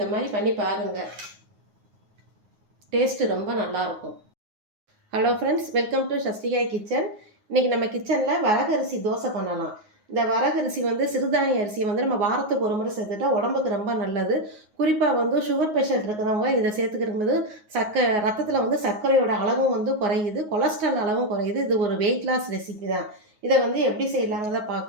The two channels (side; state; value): left; late; 9.5 ms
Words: மாதிரி பண்ணி பாருங்கள், டேஸ்ட்டு ரொம்ப நல்லாயிருக்கும். Hello friends, welcome to Sasthikai kitchen. இன்றைக்கி நம்ம கிச்சனில் வரகரிசி தோசை பண்ணலாம். இந்த வரகரிசி சிறுதானிய அரிசியை நம்ம வாரத்துக்கு ஒரு முறை சேர்த்துட்டா உடம்புக்கு ரொம்ப நல்லது. குறிப்பாக சுகர் பேஷண்ட் இருக்கிறவங்க இதை சேர்த்துக்கிறபோது ரத்தத்தில் சர்க்கரையோட அளவும் குறையுது, கொலஸ்ட்ரால் அளவும் குறையுது. இது ஒரு வெயிட் லாஸ் ரெசிபி தான். இதை எப்படி செய்யலாங்கிறத